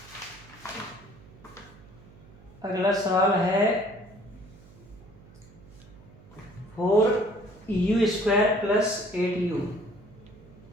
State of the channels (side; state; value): right; noise; hum, 23 dB below the sound